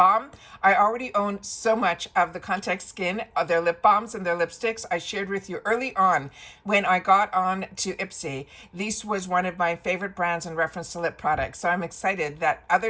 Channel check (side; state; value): both; identical; correlation 1.00